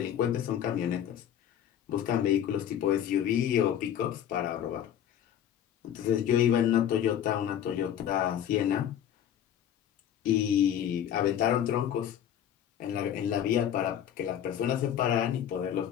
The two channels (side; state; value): right; quieter; 10.0 dB